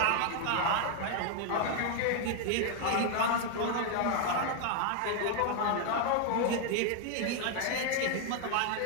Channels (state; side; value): different; both; correlation 0.00